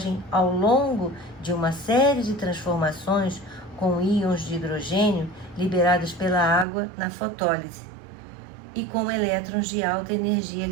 ao longo de uma série de transformações com íons de hidrogênio liberados pela água na fotólise e com elétrons de alta energia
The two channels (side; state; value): left; drops out; at 6.7 s